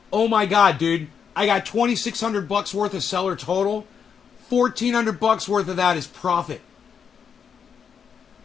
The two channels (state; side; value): quieter; right; 7.0 dB